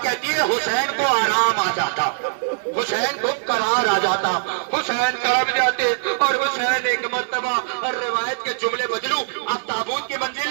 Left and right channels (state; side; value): silent; left; digital silence